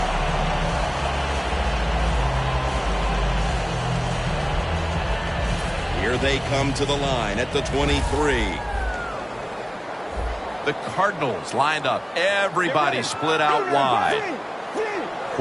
Here they come to the line at the 23. The Cardinals lined up. Everybody split out wide.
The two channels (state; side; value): identical; both; correlation 1.00